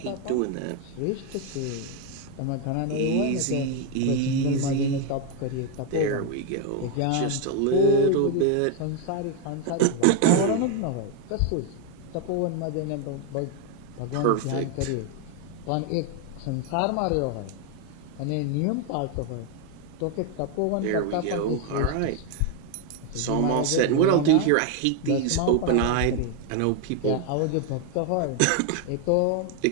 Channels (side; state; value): both; different; correlation 0.01